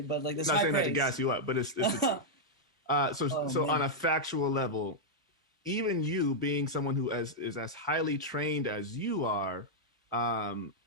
but like this. I'm not high saying praise. that to gas you up, but it's so on a factual level, even you being someone who is as highly trained as you are,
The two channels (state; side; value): normal; both; correlation -0.04